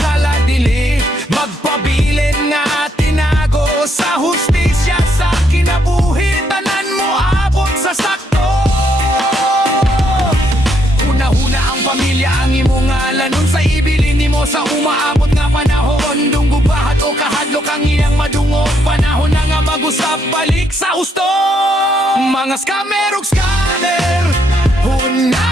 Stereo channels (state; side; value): normal; both; correlation 0.74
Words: dili magpabilin nga tinago sa hustisya sa kinabuhi, tanan mo abot sa sakto. Una-huna ang pamilya ang imong ngalanon sa ibilin nimo sa umaabot nga panahon. Dunggubahat o kahadlok ang iyang madungog, panahon na nga mag-usap balik sa husto. Mga scammer ug scanner,